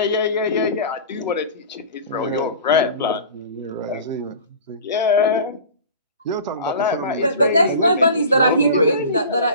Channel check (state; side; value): inverted; both; correlation -0.38